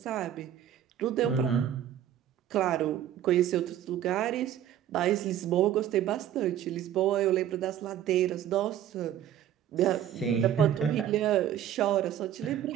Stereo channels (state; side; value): quieter; left; 10.7 dB